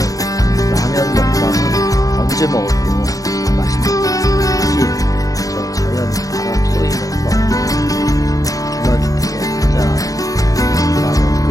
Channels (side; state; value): right; late; 0.17 ms